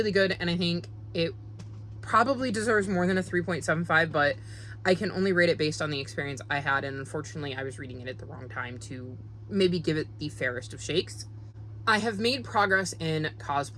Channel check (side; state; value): both; identical; correlation 1.00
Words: good, and I think it probably deserves more than a 3.75, but I can only rate it based on the experience I had, and unfortunately I was reading it at the wrong time to maybe give it the fairest of shakes. I have made progress in